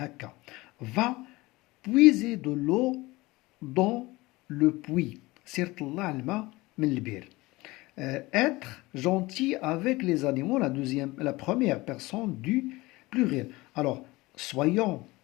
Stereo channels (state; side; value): quieter; right; 21.0 dB